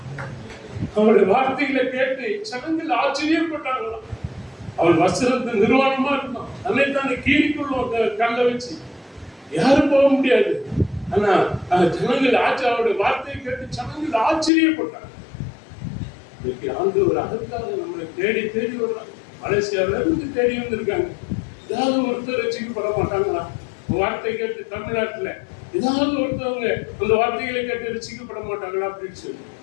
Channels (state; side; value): drops out; right; at 14.5 s